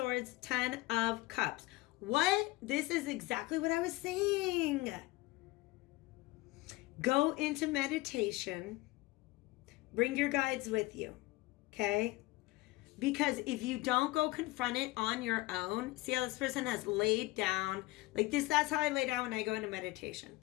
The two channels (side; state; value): right; quieter; 20.6 dB